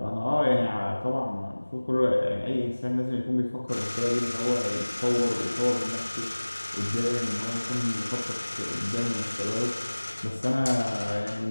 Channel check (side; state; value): both; inverted; correlation -1.00